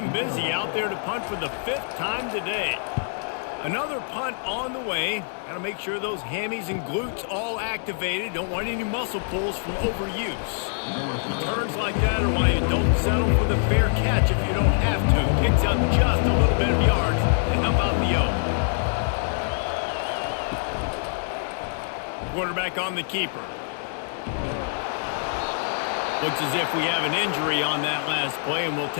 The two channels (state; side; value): silent; right; digital silence